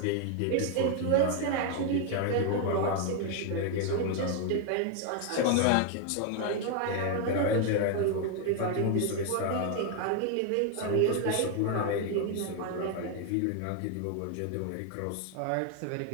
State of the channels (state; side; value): different; both; correlation 0.00